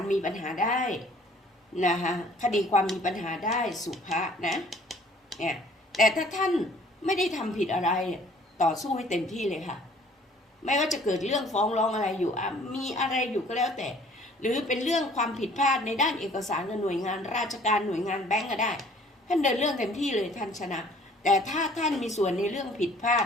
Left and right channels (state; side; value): normal; both; correlation 0.55